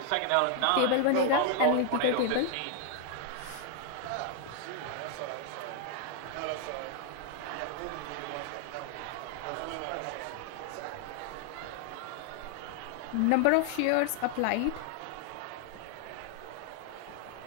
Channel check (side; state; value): both; different; correlation 0.00